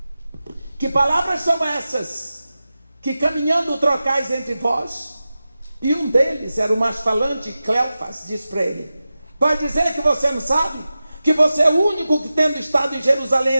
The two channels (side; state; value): both; inverted; correlation -0.94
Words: que palavras são essas que caminhando trocais entre vós? E um deles era o mais falante, Cleofas, diz para ele: vai dizer que você não sabe? Que você é o único que, tendo estado em Jerusalém